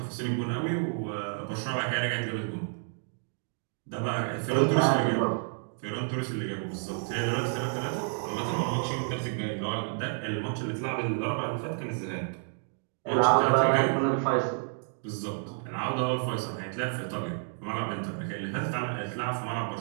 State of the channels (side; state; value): left; silent; 58 dB below the other